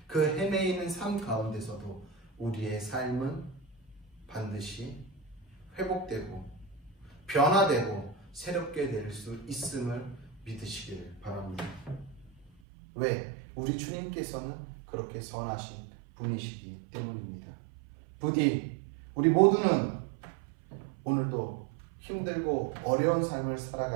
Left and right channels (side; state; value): left; drops out; at 12.5 s